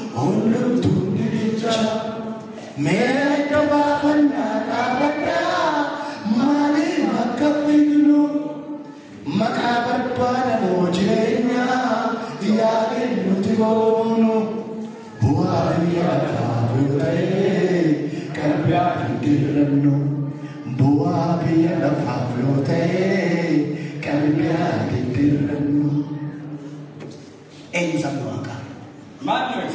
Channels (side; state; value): both; identical; correlation 1.00